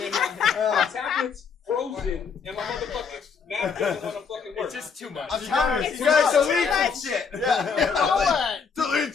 my tablet's frozen, and my motherfucking map doesn't want to fucking work. It's just too much. I'm telling you, It's you guys too delete much. some shit. Yeah. Blow Delete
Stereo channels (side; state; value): right; quieter; 5.9 dB